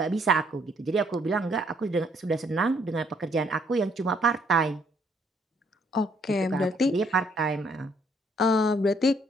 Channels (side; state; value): both; normal; correlation 0.67